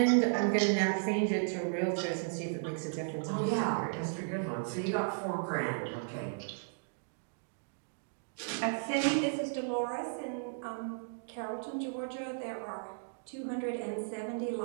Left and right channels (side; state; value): left; silent; digital silence